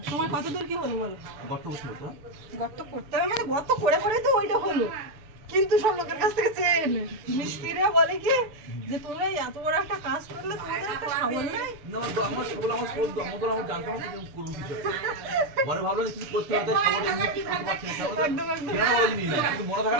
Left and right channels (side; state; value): left; late; 6.8 ms